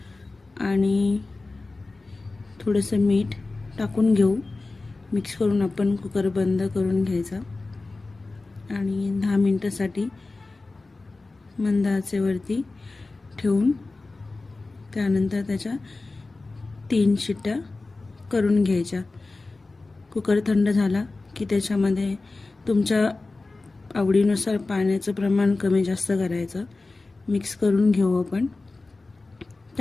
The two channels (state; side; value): quieter; right; 3.4 dB